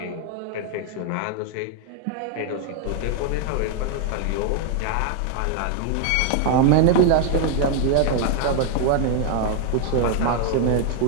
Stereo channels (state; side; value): different; both; correlation 0.00